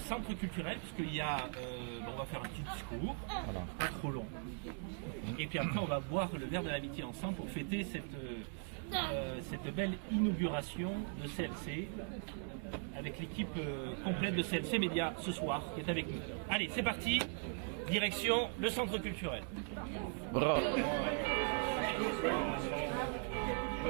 culturel, parce qu'il y a, on va faire un petit discours, pas trop long, et puis après on va boire le verre de l'amitié ensemble pour fêter cette belle inauguration de CLC, avec l'équipe complète de CLC Média ce soir, qui est avec nous. Allez, c'est parti, direction le centre culturel. Bravo.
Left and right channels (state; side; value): silent; left; 51 dB below the other